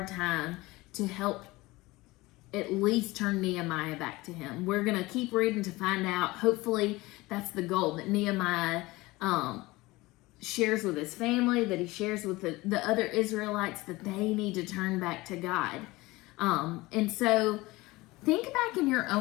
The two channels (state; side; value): quieter; right; 20.8 dB